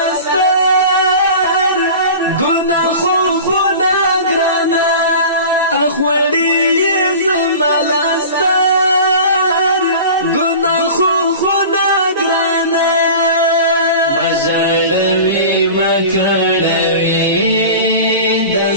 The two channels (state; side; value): inverted; both; correlation -0.37